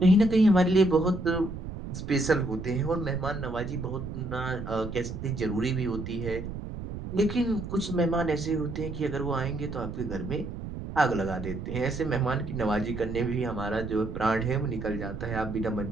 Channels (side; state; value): right; noise; rumble, 8 dB below the sound